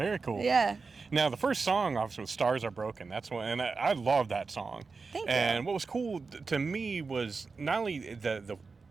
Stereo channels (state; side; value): quieter; left; 4.5 dB